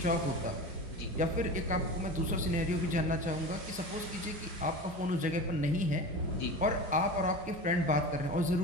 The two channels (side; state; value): both; normal; correlation 0.31